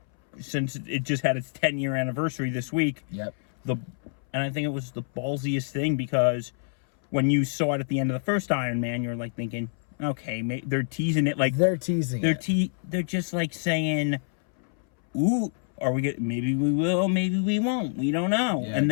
since it just had its 10-year anniversary this week. Yep. And I think it was the ballsiest thing, because when you saw it at the end of the first Iron Man, you're like thinking, okay, they're teasing it, like They're teasing it. They're just like saying, ooh, are we get? Maybe we will, maybe we won't. We don't know. Yeah,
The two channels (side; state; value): right; silent; 60 dB below the other